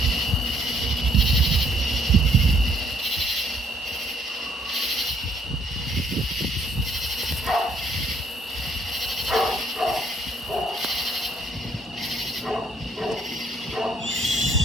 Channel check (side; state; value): both; normal; correlation 0.66